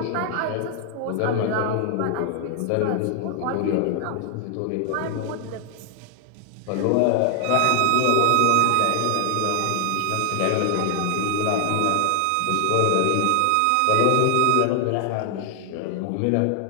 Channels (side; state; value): both; different; correlation 0.00